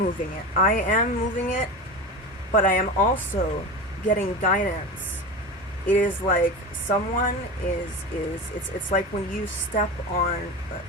it. I am moving it, but I am also getting guidance. It is like someone it's like when you step on,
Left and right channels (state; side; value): normal; both; correlation 0.26